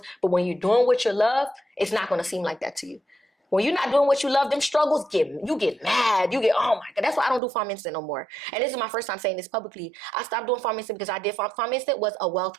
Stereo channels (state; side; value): drops out; left; at 7.4 s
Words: But when you're doing what you love, it's not going to seem like that to you. When you're not doing what you love, them struggles you get mad. You get, oh my God. That's why I don't do Farm Instant no more. And this is my first time saying this publicly. I stopped doing Farm Instant because I did Farm Instant was a wealth